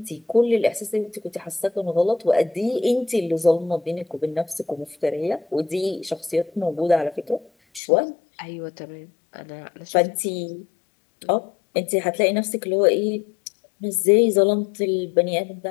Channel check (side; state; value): right; drops out; at 7.8 s